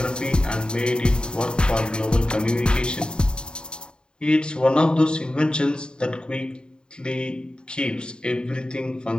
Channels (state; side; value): late; right; 0.049 ms